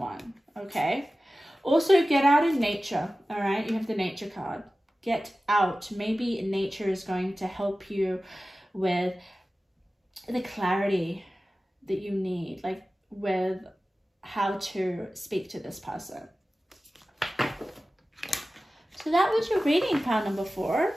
okay? Also, get out in nature, all right? You have the nature card. Get out. Maybe nature is going to help you with the clarity that you need, like with how to speak to this person. So that was your reading, pile number 4.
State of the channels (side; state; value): both; normal; correlation 0.96